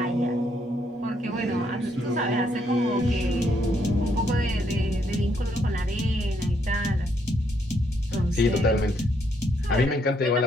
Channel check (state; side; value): normal; both; correlation 0.73